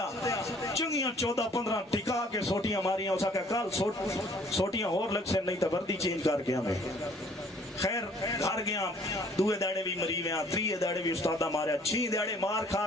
चंगियां 14-15 टिका के सोटियां मारियां उस आखे कल सोटियां होर लग से नहीं तो वर्दी चेंज करके हमें खैर घर गया दूए दाड़े भी मरी गया त्रीए दाड़े भी उस्तादा मारा 6 दाड़े मार खा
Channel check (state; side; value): normal; both; correlation 0.58